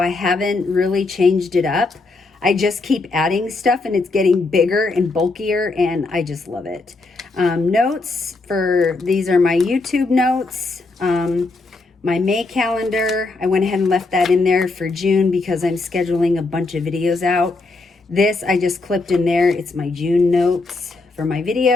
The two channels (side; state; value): right; quieter; 3.5 dB